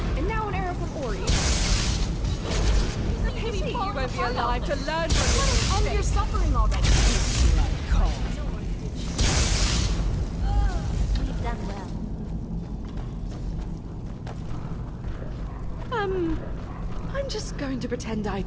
And now an arrow from Ori. Maybe you won't be alive to learn from your mistakes. End your suffering already. We've done well. I'm just going to pretend I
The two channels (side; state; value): both; identical; correlation 1.00